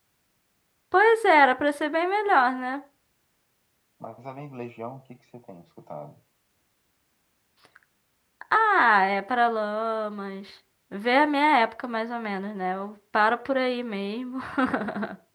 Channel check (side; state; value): both; identical; correlation 1.00